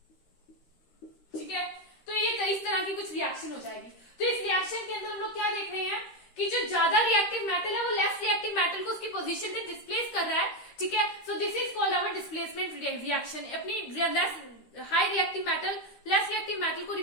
ठीक है। तो ये इस तरह की कुछ रिएक्शन हो जाएगी। तो इस रिएक्शन के अंदर हम लोग क्या देख रहे हैं कि जो ज्यादा रिएक्टिव मेटल है वो लेस रिएक्टिव मेटल को उसकी पोजीशन पे डिस्प्लेस कर रहा है, ठीक है। So this is called our displacement reaction. अपनी less high reactive metal less reactive metal को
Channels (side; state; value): right; late; 13 ms